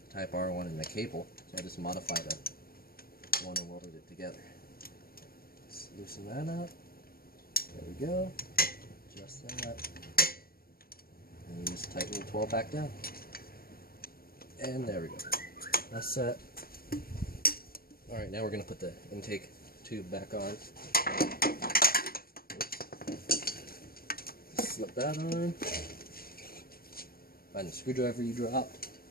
Type R one and the cable, so I just modified the one and welded it together. Let's loosen that up. There we go. Adjust that. And you just tighten the 12 back down. And there we go. That's set. Alright, now we're going to put the intake tube back on. Slip that on. Find the screwdriver you dropped.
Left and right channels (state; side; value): late; right; 0.43 ms